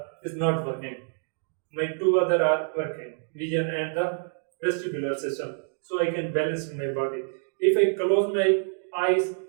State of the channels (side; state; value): left; silent; digital silence